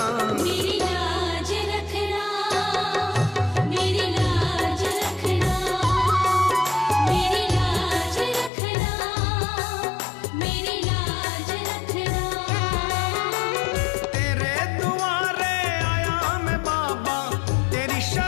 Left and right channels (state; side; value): drops out; right; at 8.5 s